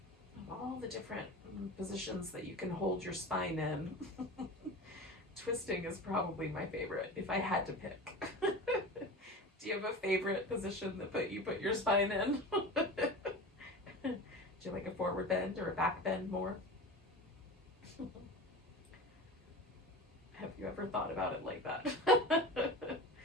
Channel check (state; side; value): normal; both; correlation 0.31